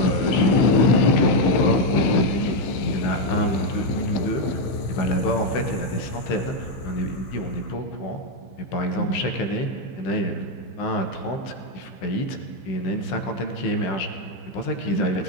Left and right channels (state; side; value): late; right; 16 ms